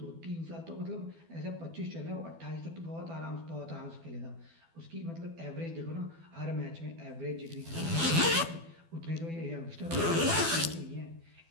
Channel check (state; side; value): late; left; 12 ms